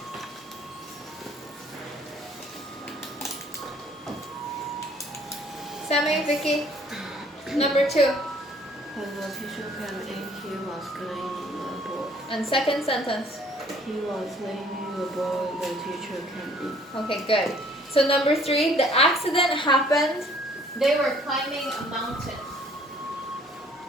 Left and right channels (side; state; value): both; normal; correlation 0.58